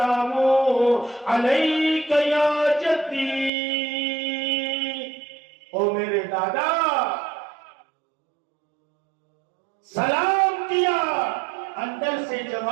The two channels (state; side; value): drops out; left; at 3.5 s